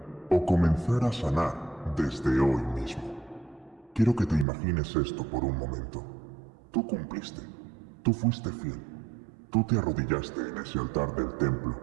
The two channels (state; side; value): drops out; left; at 4.5 s